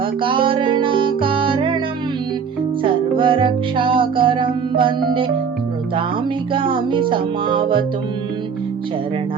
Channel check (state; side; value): quieter; left; 6.4 dB